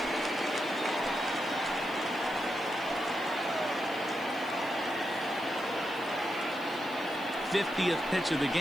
'50th pitch of the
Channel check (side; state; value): left; noise; hiss, 22 dB below the sound